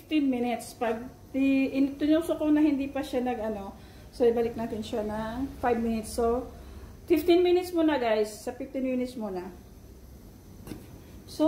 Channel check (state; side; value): identical; both; correlation 1.00